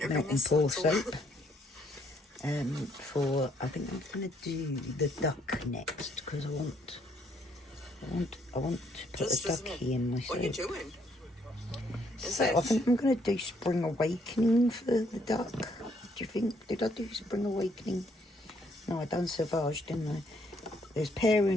melt and pour soap. I think I'm gonna do the duck next because I want to put a ducky in my soap. What are you doing? So I think I'm going to do Spring Awakening for the duck. Do you think? Did I do Spring Awakening? No, I done Sauvage, didn't I? There's Pear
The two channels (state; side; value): normal; both; correlation 0.69